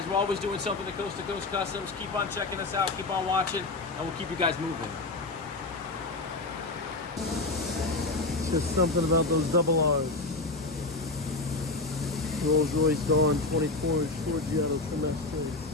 we're always doing something to Coast Customs. Keep on checking us out. Keep on watching, and we'll keep you guys moving. Just something about those double R's. Rolls Royce Dawn 24-inch Forgiato Trimestre.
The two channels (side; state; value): right; quieter; 3.2 dB